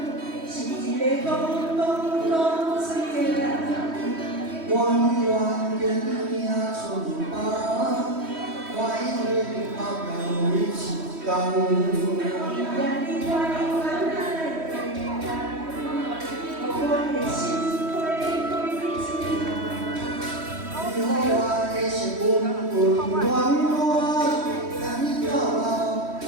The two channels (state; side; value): late; left; 3.1 ms